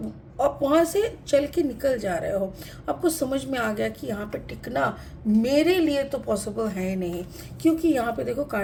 आप वहाँ से चल के निकल जा रहे हो, आपको समझ में आ गया कि यहाँ पे टिकना मेरे लिए तो पॉसिबल है नहीं, क्योंकि यहाँ पे देखो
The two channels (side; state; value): both; identical; correlation 1.00